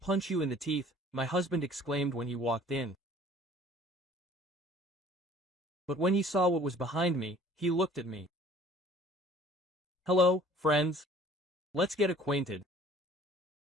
you in the teeth," my husband exclaimed when he walked in. But when he saw what was behind me, he looked at me. "Hello, friends. Let's get acquainted.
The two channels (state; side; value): normal; both; correlation 0.52